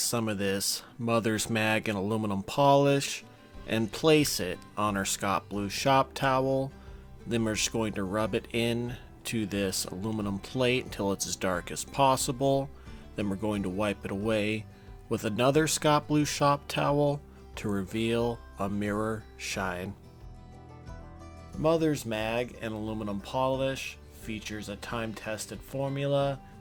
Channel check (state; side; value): identical; both; correlation 1.00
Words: of this mother's mag and aluminum polish and place it on our Scott Blue shop towel. Then we're just going to rub it in to this aluminum plate until it's as dark as possible. Then we're going to wipe it away with another Scott Blue shop towel to reveal a mirror shine. Mother's mag and aluminum polish features a time-tested formula